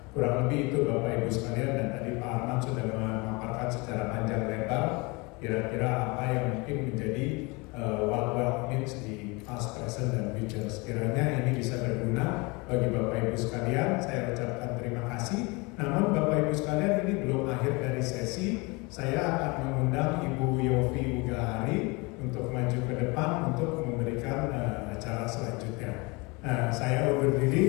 Kurang lebih itu Bapak Ibu sekalian, dan tadi Pak Arman sudah memaparkan secara panjang lebar kira-kira apa yang mungkin menjadi what wealth means di past, present, dan future. Sekiranya ini bisa berguna bagi Bapak Ibu sekalian, saya ucapkan terima kasih. Namun Bapak Ibu sekalian, ini belum akhir dari sesi. Saya akan mengundang Ibu Yofi Ugahari untuk maju ke depan untuk memberikan acara selanjutnya. Saya undur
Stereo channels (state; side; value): quieter; right; 26.9 dB